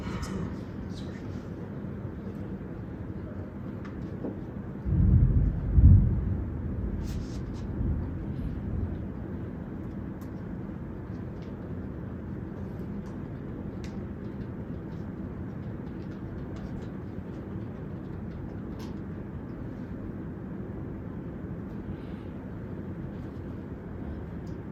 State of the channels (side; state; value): both; identical; correlation 1.00